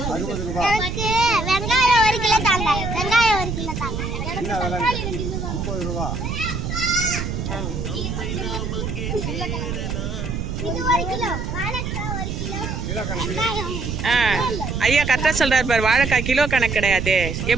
வெங்காயம் 1 கிலோ தாங்க. வெங்காயம் 1 கிலோ தாங்க. 50 ரூபா. இது 1 கிலோ. வாழைக்காய் 1 கிலோ. ஐயா கரெக்டா சொல்றாரு பாரு. வாழைக்காய் கிலோ கணக்கு கிடையாது.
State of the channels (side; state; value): right; noise; rumble, 4 dB below the sound